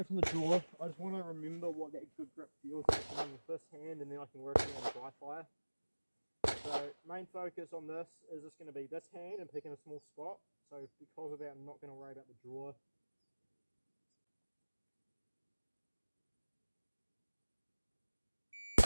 from the draw. I just want to remember what that good grip feels like with this hand, and then I can work on the dry fire. So main focus on this is just going to be this hand and picking a small spot. So because of that, I'm not going to worry about the draw.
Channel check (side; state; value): both; inverted; correlation -1.00